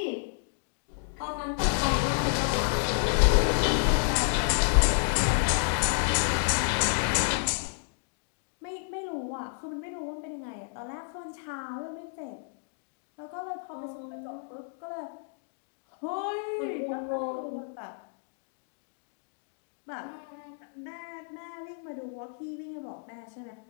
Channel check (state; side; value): silent; right; digital silence